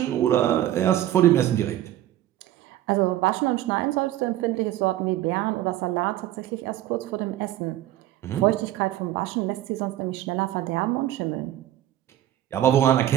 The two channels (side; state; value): left; quieter; 13.3 dB